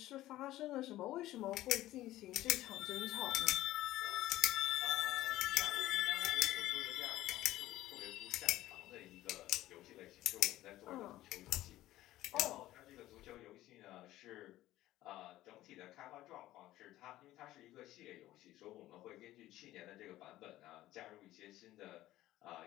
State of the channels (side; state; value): right; quieter; 15.3 dB